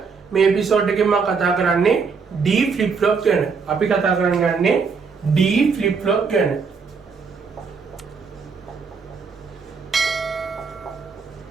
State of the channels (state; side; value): quieter; left; 5.3 dB